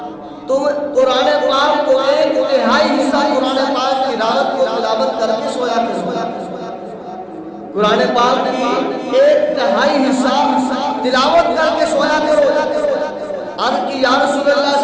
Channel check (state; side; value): identical; both; correlation 1.00